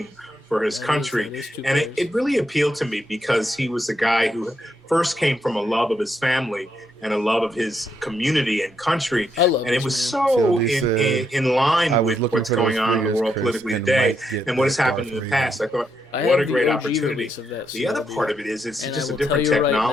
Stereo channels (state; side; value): normal; both; correlation 0.79